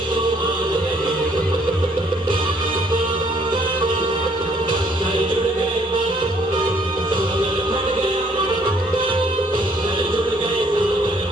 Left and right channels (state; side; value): normal; both; correlation 0.64